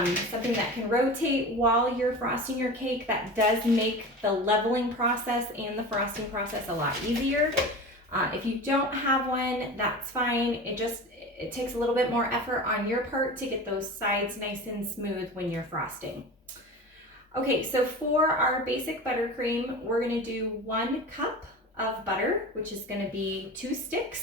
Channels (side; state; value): both; normal; correlation 0.32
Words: that can rotate while you're frosting your cake, that does make the leveling process and the frosting process a lot easier. If you don't have one, that's fine. It takes a little bit more effort on your part to get those sides nice and smooth when you're frosting. Okay, so for our basic buttercream, we're gonna do 1 cup of butter, which is going to be 2